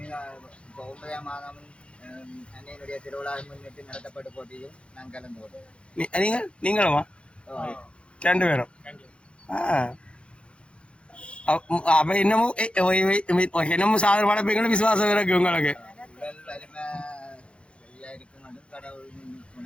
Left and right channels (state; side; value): late; right; 0.059 ms